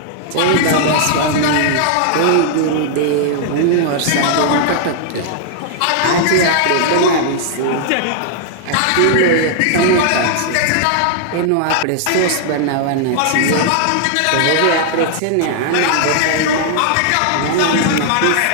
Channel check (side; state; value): both; different; correlation -0.01